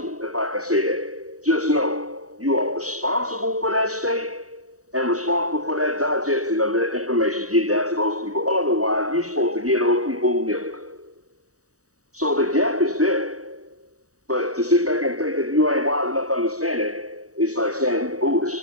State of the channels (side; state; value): left; late; 0.66 ms